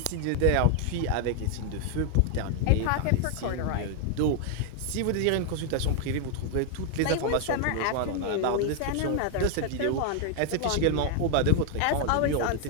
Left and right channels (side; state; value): both; different; correlation 0.00